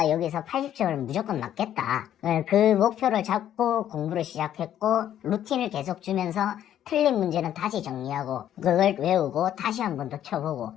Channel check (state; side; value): quieter; right; 11.0 dB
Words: 여기서 80점을 무조건 맞겠다. 그 목표를 잡고 공부를 시작했고, 루틴을 계속 주면서 틀린 문제는 다시 정리하고, 그걸 외우고 다시 한 번 더 쳐보고,